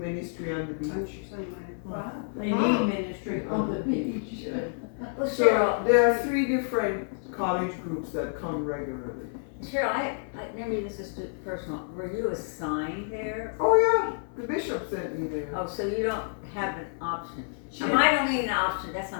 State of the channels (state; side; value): silent; right; 59 dB below the other